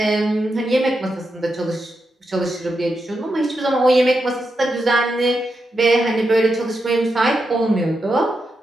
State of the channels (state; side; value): normal; both; correlation 0.86